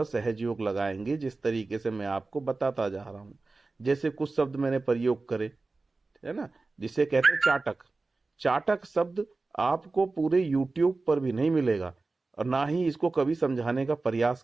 सहज योग लगाएंगे, जिस तरीके से मैं आपको बताता जा रहा हूं। जैसे कुछ शब्द मैंने प्रयोग करे, है ना, जिसे कहते हैं चाटक। चाटक शब्द आपको पूरे यूट्यूब पर भी नहीं मिलेगा और ना ही इसको कभी समझाने का प्रयास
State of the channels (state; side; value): quieter; left; 3.6 dB